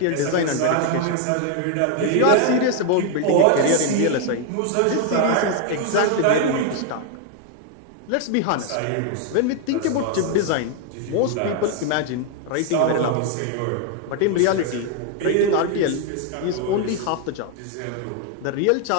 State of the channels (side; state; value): both; different; correlation 0.01